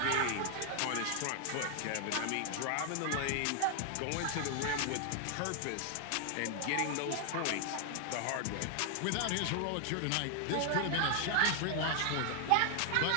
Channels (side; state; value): both; different; correlation 0.00